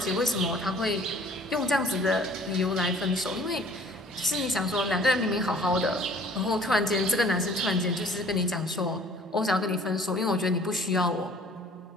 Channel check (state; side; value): normal; both; correlation 0.53